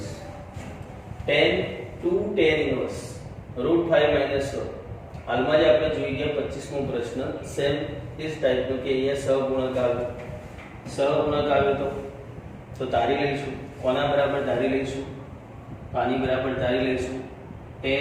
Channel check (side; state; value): both; identical; correlation 1.00